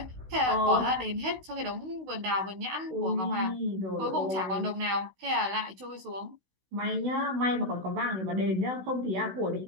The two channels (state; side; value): late; left; 16 ms